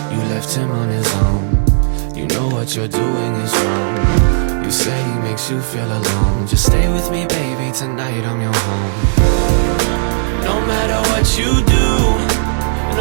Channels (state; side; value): silent; left; digital silence